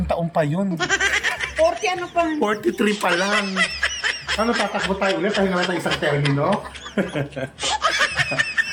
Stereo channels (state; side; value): identical; both; correlation 1.00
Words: taon pa yun. 40 ano pa? 43 pa lang. Ano, tatakbo tayo ulit? Pahinga natin isang termino.